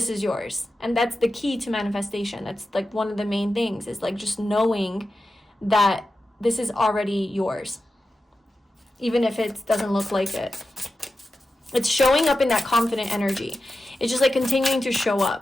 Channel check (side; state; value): both; normal; correlation 0.92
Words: is yours. And that's the key to manifestation. That's like one of the main things, is like just knowing that this is already yours, even if it doesn't look like it. It's showing up in that confident energy. It's just like continuing to show